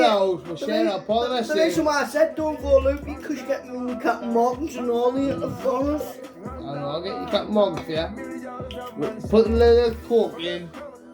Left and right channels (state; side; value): identical; both; correlation 1.00